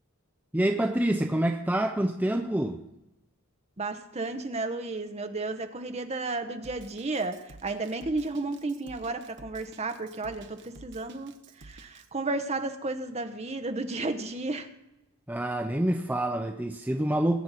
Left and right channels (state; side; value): normal; both; correlation 0.68